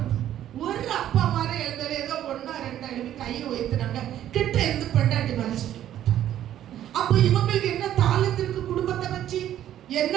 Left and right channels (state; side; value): quieter; left; 11.6 dB